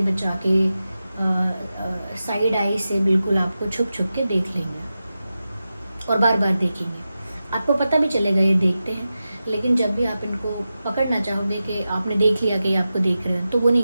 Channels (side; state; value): both; inverted; correlation -0.92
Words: बचा के साइड आई से बिल्कुल आपको छुप छुप के देख लेंगे और बार बार देखेंगे। आपको पता भी चलेगा ये देखते हैं, लेकिन जब भी आप इनको पकड़ना चाहोगे कि आपने देख लिया कि ये आपको देख रहे हैं, तो वो